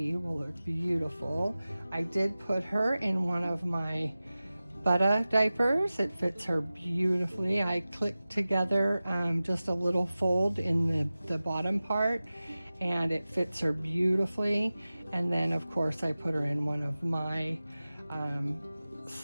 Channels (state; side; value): inverted; both; correlation -0.96